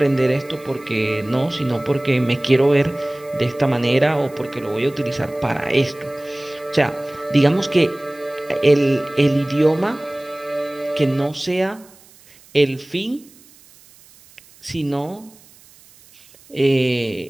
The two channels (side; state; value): right; noise; hiss, 26 dB below the sound